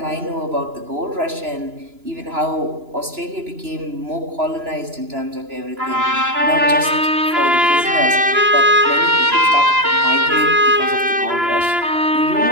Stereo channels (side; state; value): left; late; 2.9 ms